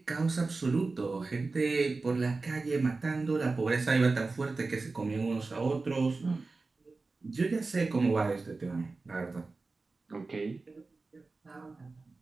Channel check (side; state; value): left; quieter; 3.8 dB